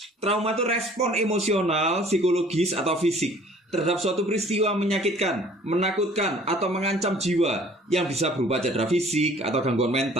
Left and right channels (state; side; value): normal; both; correlation 0.53